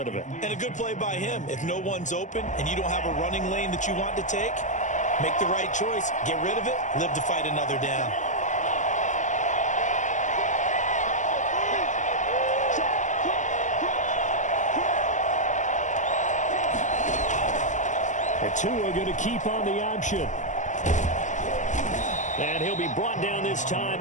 of it. And a good play by him. If no one's open and you don't have a running lane that you want to take, make the right choice. Get rid of it. Live to fight another down. The two are going to keep on the option. And he'll be brought down this time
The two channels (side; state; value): right; late; 0.36 ms